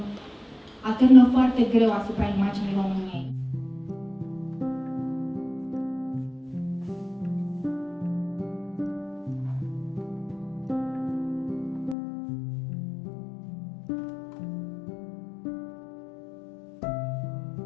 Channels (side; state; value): right; drops out; at 12.0 s